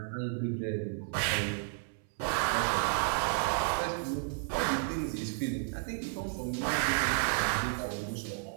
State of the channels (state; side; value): silent; left; 56 dB below the other